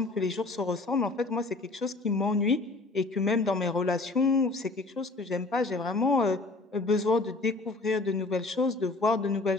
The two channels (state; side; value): quieter; right; 3.3 dB